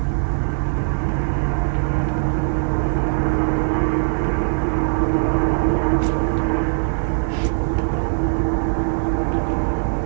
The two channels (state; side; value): silent; left; digital silence